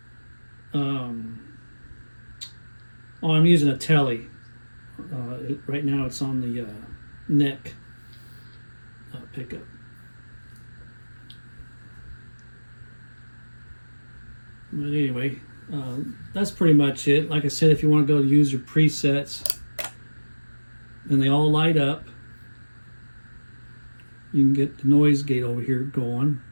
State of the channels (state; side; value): inverted; both; correlation -1.00